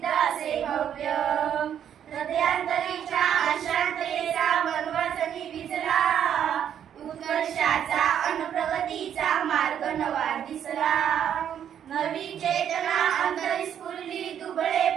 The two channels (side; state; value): left; quieter; 9.3 dB